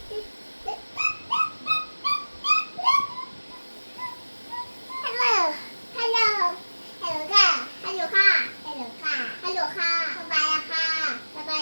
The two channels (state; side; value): inverted; both; correlation -1.00